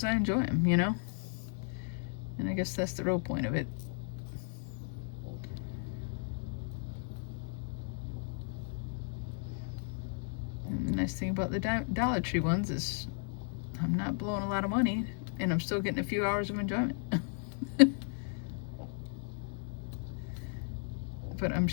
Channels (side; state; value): right; silent; 54 dB below the other